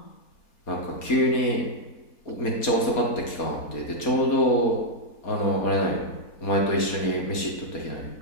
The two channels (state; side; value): late; right; 4.2 ms